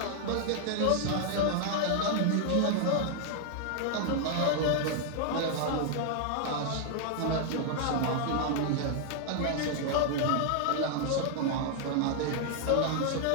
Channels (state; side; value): different; both; correlation 0.00